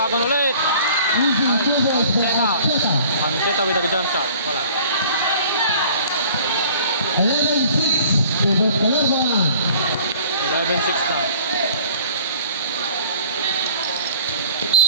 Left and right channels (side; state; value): both; inverted; correlation -0.50